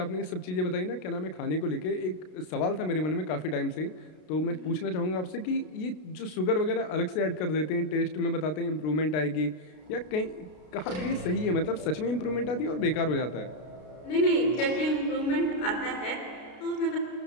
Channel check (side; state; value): right; late; 33 ms